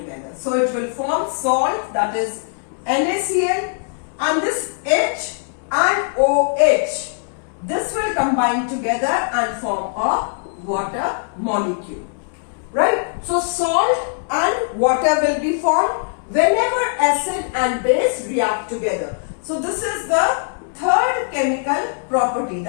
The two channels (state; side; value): silent; right; 65 dB below the other